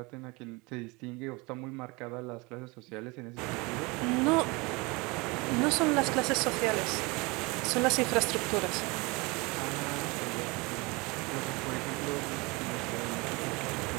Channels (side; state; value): left; quieter; 25.9 dB